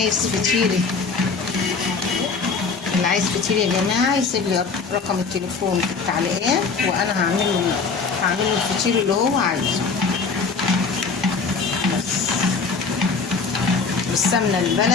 فطير، اللي عايز فطير يا جماعة يسيب لي رقم التليفون في التعليقات، وانا هعمل له الفطير اللي هو عايزه. بس بالسمنة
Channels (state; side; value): quieter; right; 4.8 dB